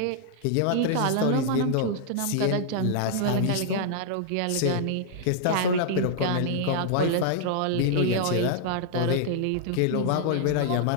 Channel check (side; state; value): both; different; correlation -0.01